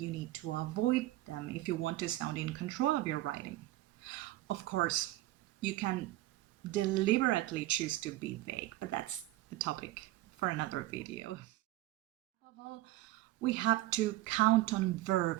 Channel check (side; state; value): left; quieter; 16.7 dB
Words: need to avoid them if you want to sound in control of your writing. Of course, you can deliberately choose to be vague, but that's a topic for another video. Above all, we have to count on